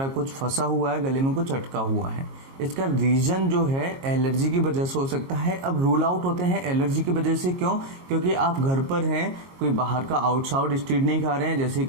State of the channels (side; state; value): left; late; 22 ms